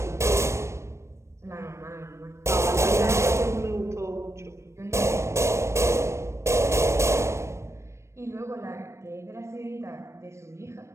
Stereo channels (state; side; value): late; left; 0.13 ms